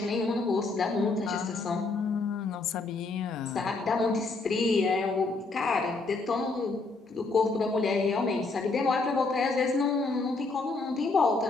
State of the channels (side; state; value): right; quieter; 3.7 dB